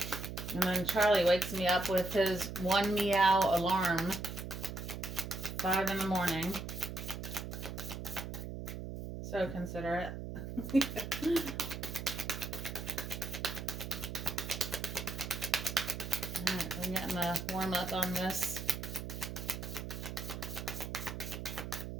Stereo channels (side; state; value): right; noise; hum, 7 dB below the sound